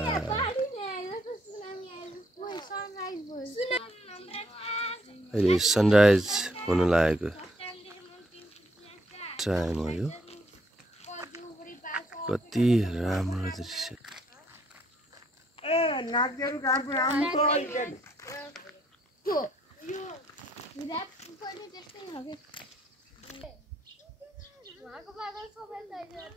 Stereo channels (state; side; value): normal; both; correlation 0.70